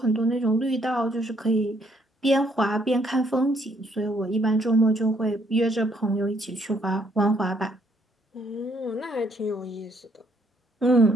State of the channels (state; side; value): normal; both; correlation 0.69